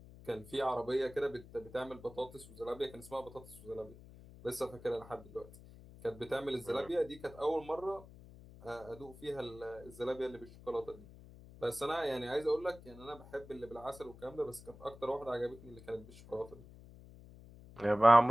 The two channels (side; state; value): left; noise; hum, 18 dB below the sound